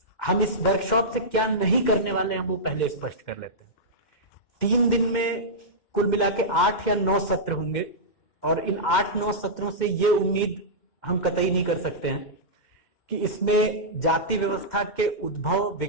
हम इस वर्कशॉप से क्या नहीं करने वाले हैं वो पहले स्पष्ट कर लेते हैं। 3 दिन में कुल मिला के 8 या 9 सत्र होंगे, और इन 8-9 सत्रों से ये उम्मीद हम कतई नहीं कर सकते हैं कि इसमें जाति व्यवस्था के उद्भव,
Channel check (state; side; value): late; right; 2.1 ms